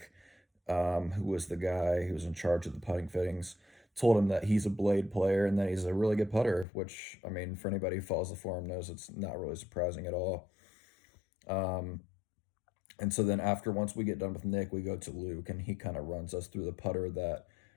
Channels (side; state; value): right; drops out; at 6.7 s